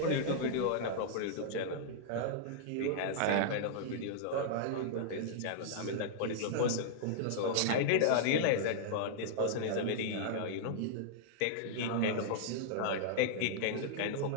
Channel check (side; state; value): both; different; correlation -0.01